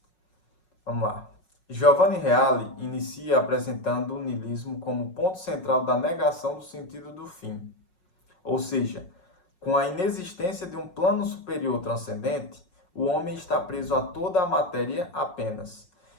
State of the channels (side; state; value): right; late; 5.5 ms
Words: Vamos lá. Giovanni Reale inicia apresentando o niilismo como ponto central da negação do sentido do fim. Ou seja, com a inexistência de um plano superior transcendente, o homem está preso a toda a matéria apenas.